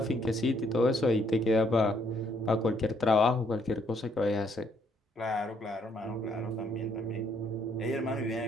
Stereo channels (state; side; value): normal; both; correlation 0.69